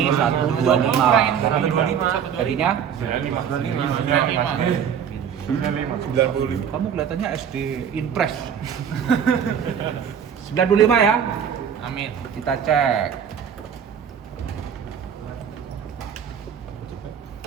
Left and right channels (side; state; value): left; quieter; 8.1 dB